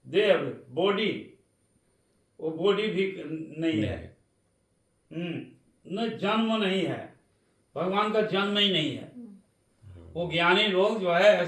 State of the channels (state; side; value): identical; both; correlation 1.00